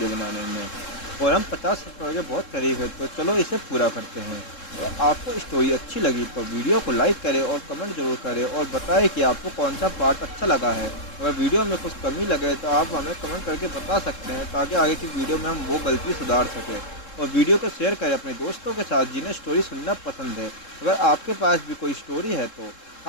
बनाने में, और हम 50 सब्सक्राइबर के बहुत करीब है। तो चलो इसे पूरा करते हैं। और आपको स्टोरी अच्छी लगी तो वीडियो को लाइक करें और कमेंट जरूर करें और बताएं कि आपको कौन सा पार्ट अच्छा लगा है। अगर वीडियो में कुछ कमी लगे तो आप हमें कमेंट करके बता सकते हैं, ताकि आगे की वीडियो में हम वो गलती सुधार सकें। और वीडियो को शेयर करें अपने दोस्तों के साथ जिन्हें स्टोरी सुनना पसंद है। अगर आपके पास भी कोई स्टोरी है तो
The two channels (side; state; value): right; late; 3.7 ms